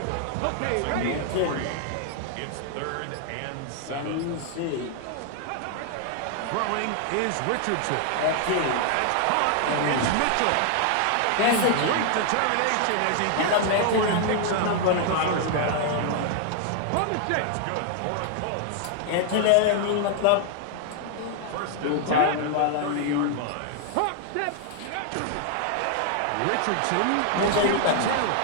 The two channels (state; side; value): different; both; correlation 0.00